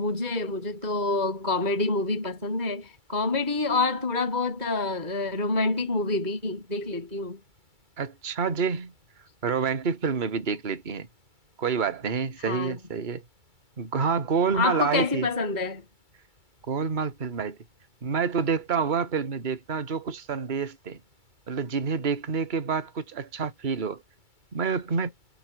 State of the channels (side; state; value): left; late; 2.3 ms